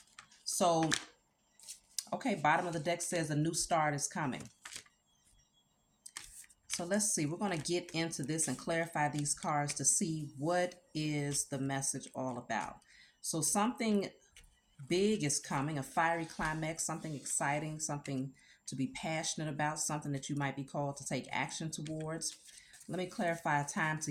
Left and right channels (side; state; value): both; identical; correlation 1.00